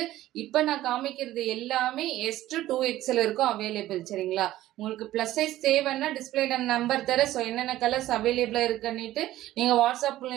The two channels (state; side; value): quieter; left; 14.8 dB